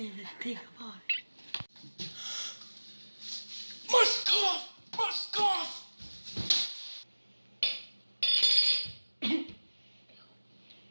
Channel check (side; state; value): both; inverted; correlation -1.00